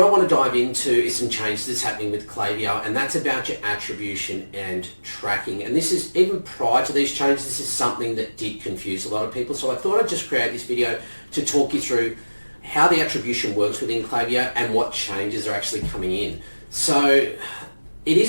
I want to dive into is some changes that's happening with Klaviyo, and that's about your attribution and tracking. And this is, even prior to these changes, this is something that did confuse a lot of people. So I thought I'd just create this video to talk you through how the attribution works within Klaviyo and what changes are actually coming in. So it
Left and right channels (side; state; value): both; inverted; correlation -1.00